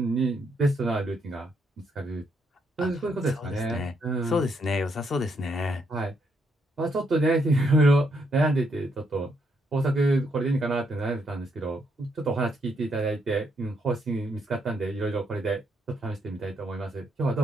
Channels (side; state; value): both; normal; correlation 0.76